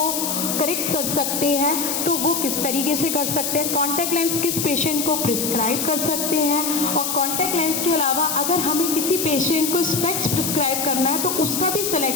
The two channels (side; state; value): left; noise; hiss, 1 dB below the sound